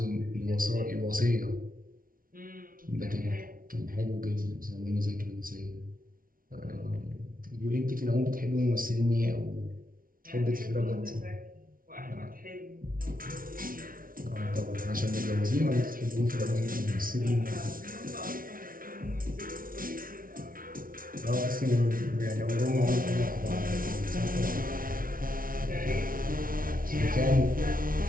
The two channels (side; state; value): left; late; 0.41 ms